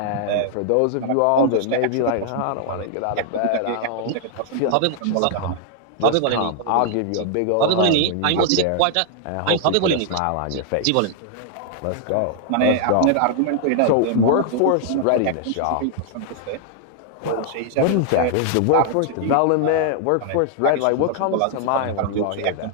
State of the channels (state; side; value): different; both; correlation 0.00